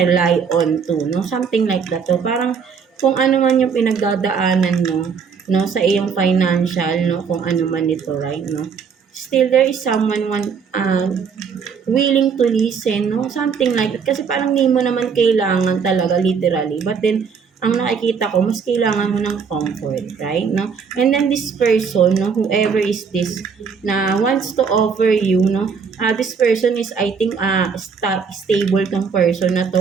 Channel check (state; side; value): quieter; left; 6.1 dB